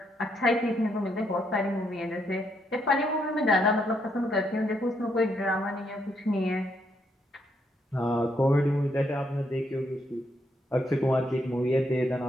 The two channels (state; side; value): normal; both; correlation 0.76